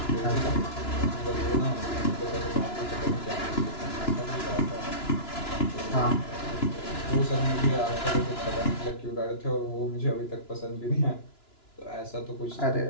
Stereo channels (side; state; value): right; late; 2.9 ms